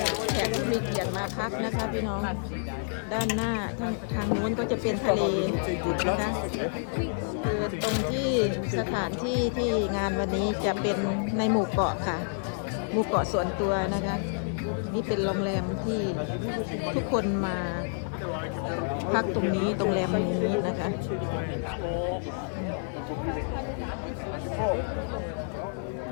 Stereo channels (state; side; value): silent; right; digital silence